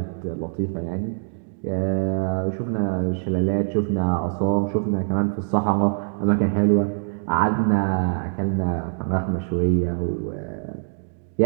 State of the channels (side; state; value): left; silent; digital silence